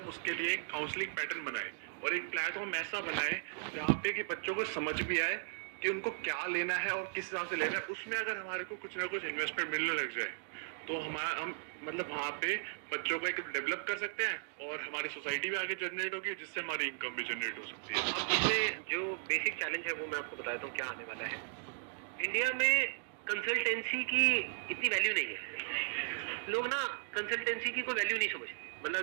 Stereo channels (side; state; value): left; silent; digital silence